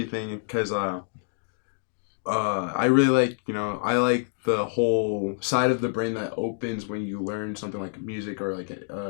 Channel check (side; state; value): right; silent; digital silence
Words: because I really like, I like the whole side of the brain that opens when you learn something like music or like